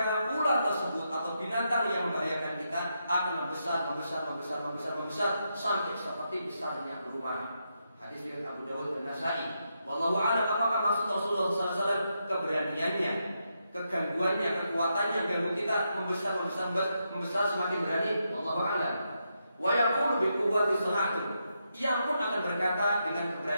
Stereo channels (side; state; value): both; inverted; correlation -0.83